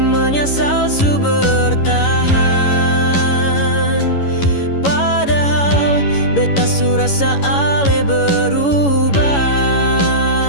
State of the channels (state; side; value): late; right; 11 ms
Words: su bertahan, padahal beta su rasa ale berubah.